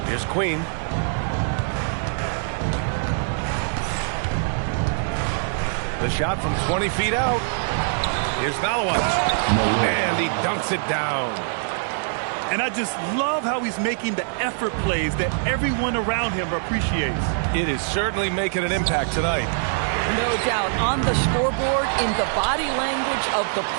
Here's Queen. The shot from 20 feet out. Here's Malawach. And he dunks it down. And I just love how he's making the effort plays that everyone around him appreciates. It is certainly making an impact tonight. No doubt. On the scoreboard, in the body language of the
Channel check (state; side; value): silent; left; digital silence